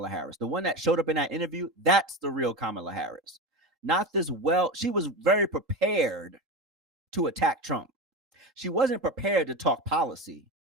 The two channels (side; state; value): both; normal; correlation 0.22